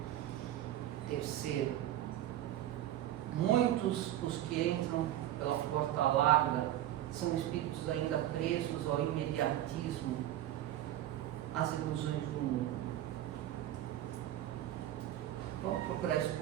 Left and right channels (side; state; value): left; quieter; 12.9 dB